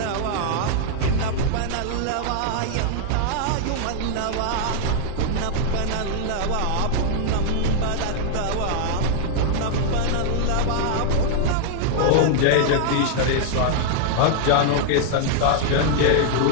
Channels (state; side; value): different; both; correlation -0.01